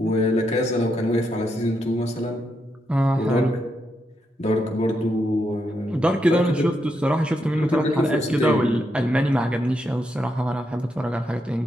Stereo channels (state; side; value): normal; both; correlation 0.81